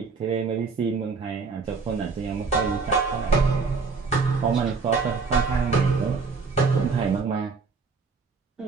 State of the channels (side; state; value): left; quieter; 4.7 dB